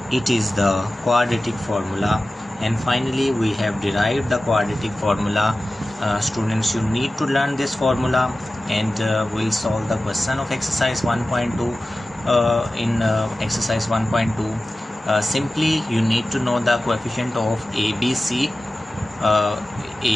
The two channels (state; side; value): normal; both; correlation 0.95